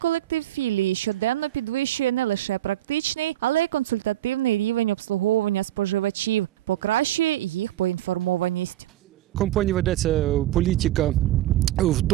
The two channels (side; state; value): left; quieter; 13.9 dB